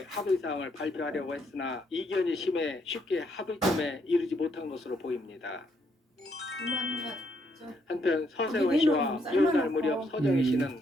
합의사항을 발표하려고 했으나 이견이 심해 쉽게 합의점에 이르지 못한 것으로 보입니다. 한편 서세원 씨와 이혼할 무렵 서정희 씨는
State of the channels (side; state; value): both; normal; correlation 0.73